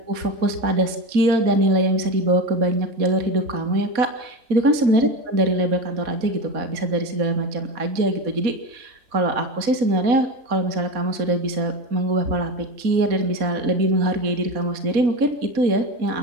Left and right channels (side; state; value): left; late; 4.1 ms